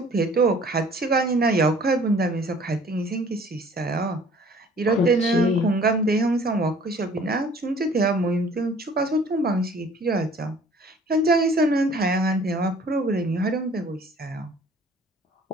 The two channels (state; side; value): normal; both; correlation 0.53